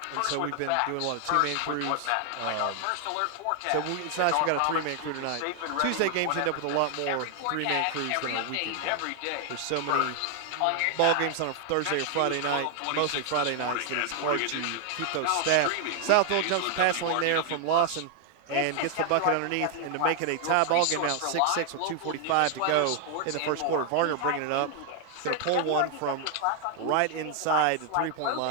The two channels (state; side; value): different; both; correlation 0.00